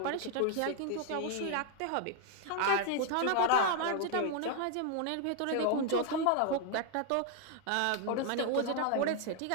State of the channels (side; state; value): both; different; correlation 0.00